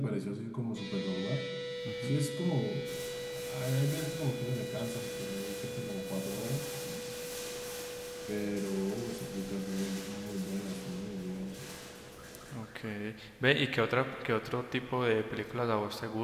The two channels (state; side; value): identical; both; correlation 1.00